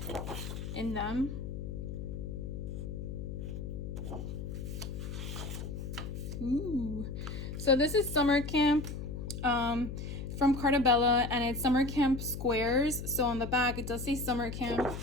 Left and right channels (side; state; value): left; noise; hum, 6 dB below the sound